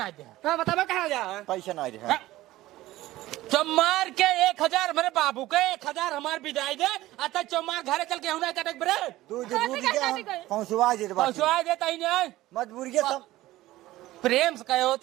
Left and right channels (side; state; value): left; quieter; 16.5 dB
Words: दे हाँ बताबे कहाँ जा पैसा ना रहे चमार के 1000 मेरे बाबू के 1000 हमार विदाई दे अतः चमार घरे चल के हुना कटक बरे तू जरूर क्या पहुंचवा जे पहुंचवा देता ही नहीं मजबूरी के सब प्रेम से कहे